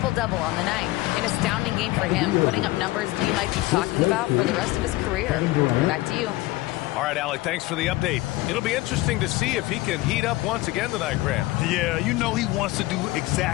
on the night. An astounding game for him, putting up numbers we might be talking about for the rest of his career. Back to you. All right, Alec, thanks for the update. It'll be interesting to see if he can heat up once again tonight, Grant. Yeah, you know he wants to do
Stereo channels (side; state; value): right; quieter; 19.0 dB